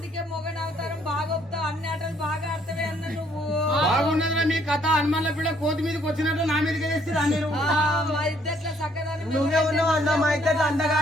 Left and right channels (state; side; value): normal; both; correlation 0.66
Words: మొగన్ అవతారం బాగా ఒప్పుతావు అన్ని ఆటలు బాగా ఆడతావే అన్న నువ్వు బాగున్నదిరా మీ కథ. హనుమాన్ల పిల్ల కోతి మీదకి వచ్చినట్టు నా మీదకి వేస్తారా మీరు? మా ఇద్దట్లో చక్కదనం నువ్వే ఉన్నావు అన్న మా ఇద్దరు